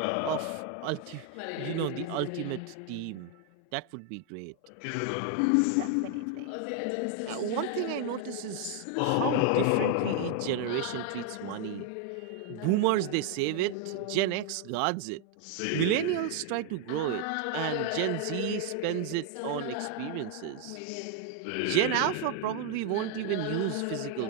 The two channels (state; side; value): different; both; correlation 0.00